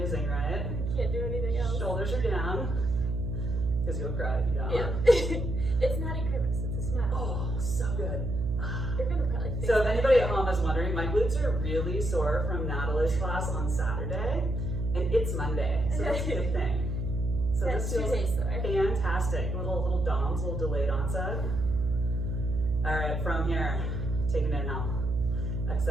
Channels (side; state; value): right; noise; hum, 2 dB below the sound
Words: right? Can't do anything else. Shoulders are down, because you'll cry if you don't. Yeah. It's not a grimace, it's a smile. Oh, so good. You're gonna probably think So if anybody at home is wondering, my glutes are really sore from Natalie's class on Saturday, and it's Monday, so that's a good thing. So that's this 2 feels days though. fantastic. Little DOMs, little delayed onset. All right, from here, take an inhale.